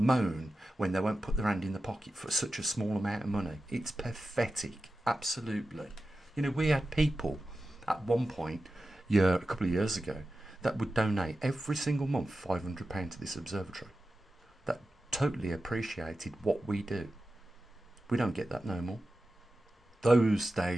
when they won't put their hand in the pocket for such a small amount of money. It's pathetic, absolutely. You know, we had people at one point, a couple of years ago, that would donate every single month £500 to this observatory. That totally appreciated what we do. We don't get that no more. Those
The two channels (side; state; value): both; normal; correlation 0.93